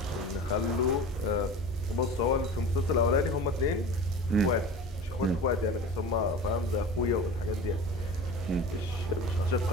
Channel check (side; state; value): both; normal; correlation 0.36